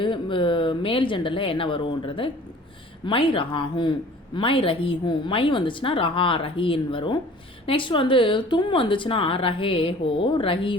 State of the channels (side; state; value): both; normal; correlation 0.48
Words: மேல் ஜெண்டரில் என்ன வரும்ன்றது மை ரஹாஹும், மை ரஹீஹும். மை வந்துச்சுன்னா ரஹா ரஹீன்னு வரும். நெக்ஸ்ட் வந்து தும் வந்துச்சுன்னா ரஹே ஹோ ரஹி